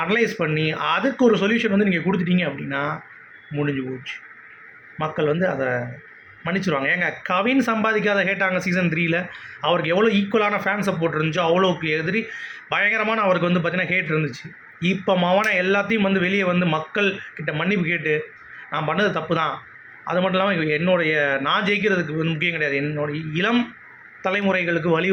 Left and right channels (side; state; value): both; identical; correlation 1.00